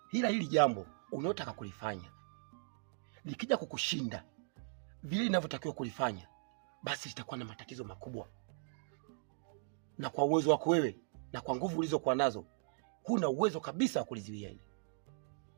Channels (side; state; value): left; silent; digital silence